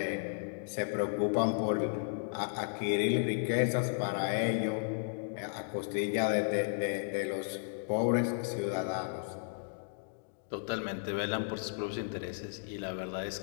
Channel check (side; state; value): right; silent; digital silence